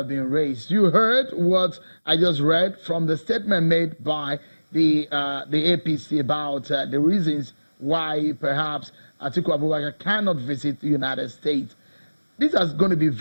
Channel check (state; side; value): inverted; both; correlation -1.00